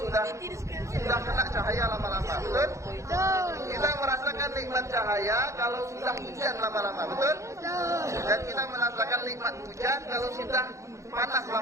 kena cahaya lama-lama, betul? Kita merasakan nikmat cahaya kalau sudah hujan lama-lama, betul? Dan kita merasakan nikmat hujan kalau sudah panas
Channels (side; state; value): left; late; 0.15 ms